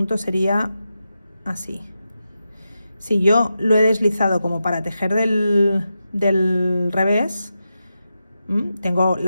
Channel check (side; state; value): both; inverted; correlation -0.89